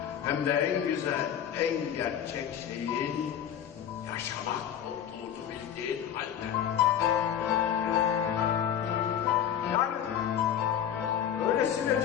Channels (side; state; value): right; quieter; 9.6 dB